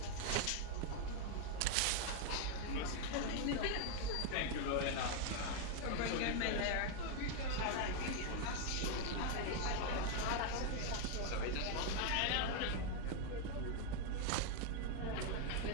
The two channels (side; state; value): both; different; correlation 0.01